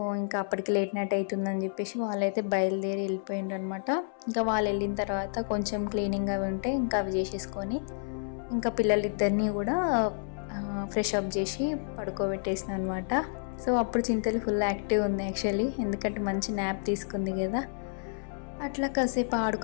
ఇంకా అప్పటికి లేట్ నైట్ అవుతుందని చెప్పేసి వాళ్ళైతే బయలుదేరి వెళ్ళిపోయిండ్రు అనమాట. ఇంకా వాళ్ళు వెళ్ళిన తర్వాత కొంచెం క్లీనింగ్ అవి ఉంటే ఇంకా అవి చేసేసుకొని ఇంకా పిల్లలిద్దరినీ కూడా ఫ్రెష్ అప్ చేసి పడుకోబెట్టేసిన అనమాట. సో అప్పుడు చింతలు ఫుల్ యాక్టివ్ ఉంది యాక్చువల్లీ, ఎందుకంటే మంచి న్యాప్ తీసుకుంది కదా. అట్లా కాసేపు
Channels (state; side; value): silent; right; 58 dB below the other